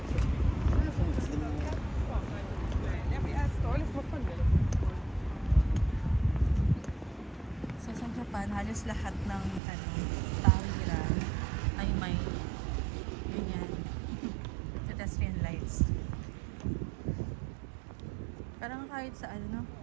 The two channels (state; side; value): drops out; left; at 9.6 s